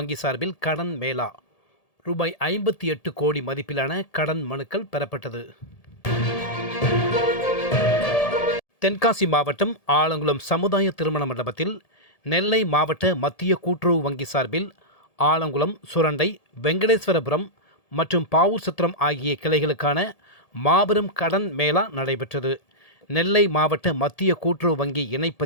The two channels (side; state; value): right; late; 1.8 ms